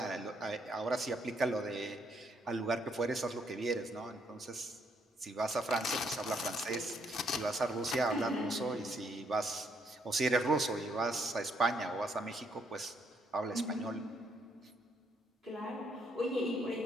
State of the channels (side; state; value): both; normal; correlation 0.72